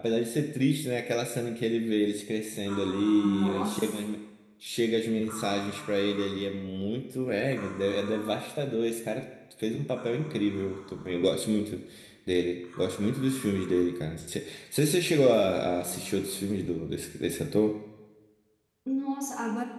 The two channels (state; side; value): identical; both; correlation 1.00